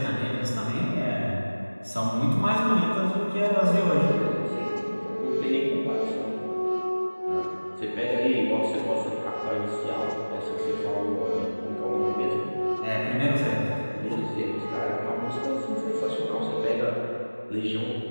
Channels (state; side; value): inverted; both; correlation -1.00